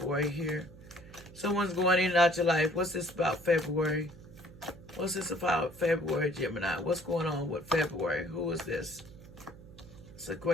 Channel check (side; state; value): right; noise; hum, 19 dB below the sound